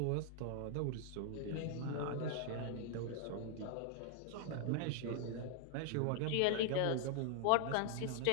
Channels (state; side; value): different; both; correlation 0.00